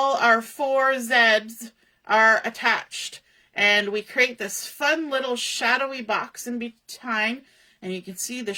our 4 Zs are attached, and we create this fun little shadowy box in behind. And you can see the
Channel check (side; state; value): both; identical; correlation 1.00